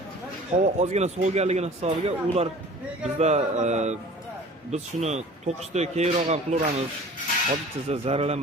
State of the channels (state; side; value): normal; both; correlation 0.45